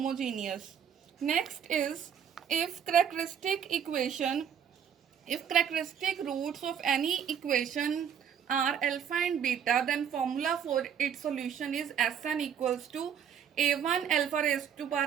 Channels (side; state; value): left; quieter; 8.2 dB